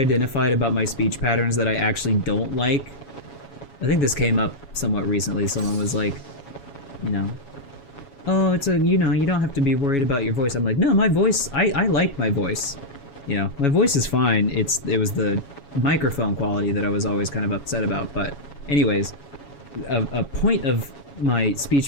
about my speech patterns that I actually don't like, I think this came up somewhat recently. Someone was like, you know, oh, it's a, you know, you don't have to be worried about your voice. I'm like, no, my voice, I like my voice. You know, my voice is fine. It was the microphone quality that I was always kind of upset about. But anyways, a point of my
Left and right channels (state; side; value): late; right; 7.2 ms